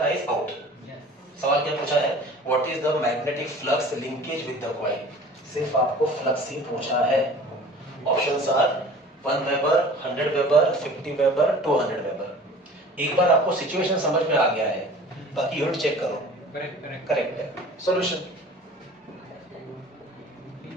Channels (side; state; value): both; normal; correlation 0.44